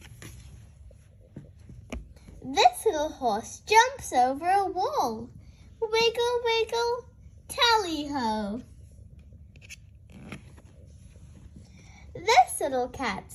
This little horse jumps over a wall. Wiggle, wiggle, tally-ho. This little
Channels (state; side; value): identical; both; correlation 1.00